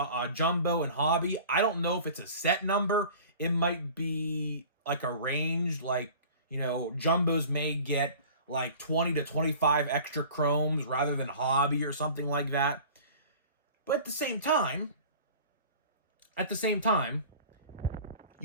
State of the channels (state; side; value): inverted; both; correlation -0.43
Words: and Hobby. I don't know if it's a set number. It might be like a range. Like, you know, Jumbos may get like 20 to 25 extra chromes rather than Hobby or something like that. But at the same time,